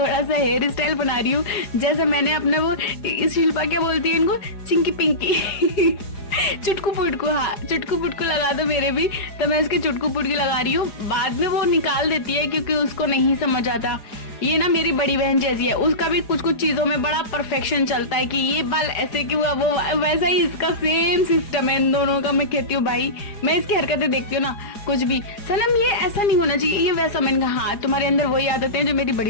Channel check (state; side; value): late; right; 4.9 ms